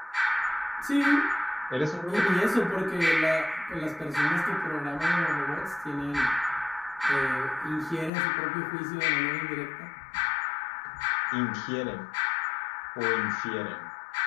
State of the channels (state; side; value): drops out; right; at 8.1 s